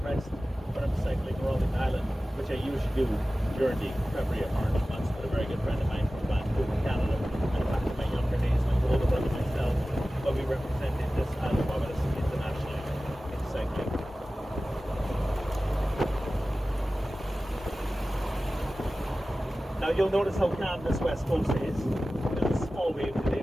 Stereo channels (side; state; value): both; normal; correlation 0.96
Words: rest when I'm cycling around the island, which I usually do during the February or March months with a very good friend of mine from Vancouver, Canada. And back in my younger days, my older brother and myself, but we represented this island of Barbados internationally in cycling. Now you'll notice how calm this west coast is. There's a small wave today,